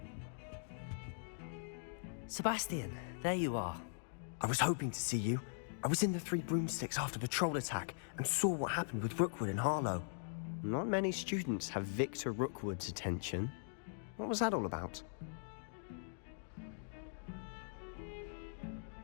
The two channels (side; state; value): right; silent; digital silence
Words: Sebastian, there you are. I was hoping to see you. I was in the Three Broomsticks after the troll attack and saw what happened with Rookwood and Harlow. Not many students have Victor Rookwood's attention. What was that all about?